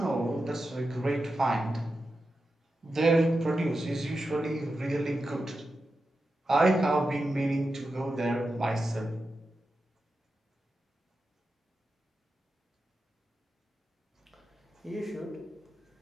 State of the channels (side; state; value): both; normal; correlation 0.90